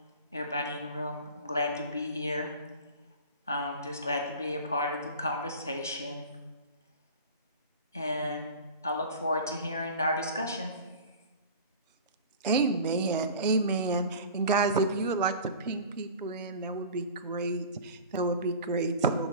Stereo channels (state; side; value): inverted; both; correlation -0.37